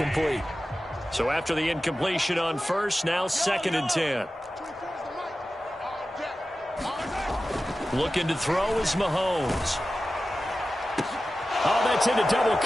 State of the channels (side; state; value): both; normal; correlation 0.94